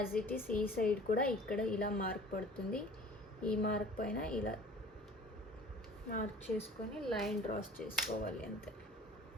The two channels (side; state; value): both; normal; correlation 0.46